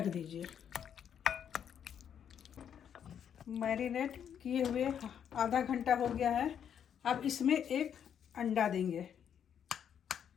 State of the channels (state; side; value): quieter; right; 8.6 dB